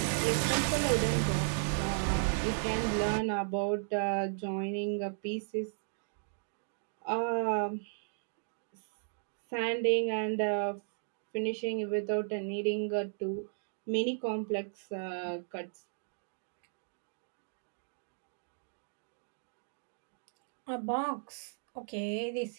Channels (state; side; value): silent; left; digital silence